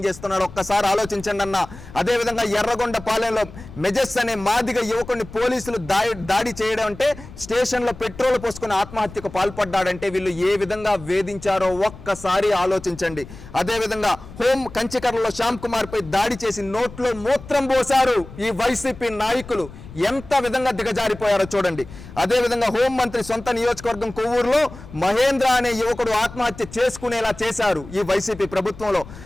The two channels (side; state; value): left; noise; rumble, 16 dB below the sound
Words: చేస్తున్నాడు ఒక్కసారి ఆలోచించండి అన్న. అదేవిధంగా ఎర్రగొండ పాలెంలో మెజెస్ అనే మాదిగ యువకుడిని పోలీసులు దాడి చేయడం అంటే స్టేషన్లో పెట్రోల్ పోసుకుని ఆత్మహత్యకు పాల్పడ్డాడంటే వీళ్ళు ఏ విధంగా వేధించారో ఒక్కసారి ఆలోచించండి. అదేవిధంగా కంచికర్లలో శ్యామ్ కుమార్ పై దాడి చేసి నోట్లో మూత్రం పోశారు ఈ వైసీపీ నాయకులు. ఎంత విధంగా దిగజారిపోయారో చూడండి. అదేవిధంగా హోంమంత్రి సొంత నియోజకవర్గం కొవ్వూరులో మహేంద్ర అనే యువకుడు ఆత్మహత్య చేసుకునేలా చేశారు ఈ వైసీపీ ప్రభుత్వంలో.